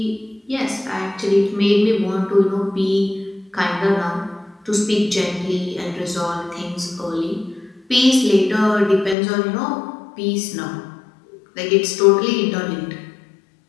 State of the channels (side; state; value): right; drops out; at 9.2 s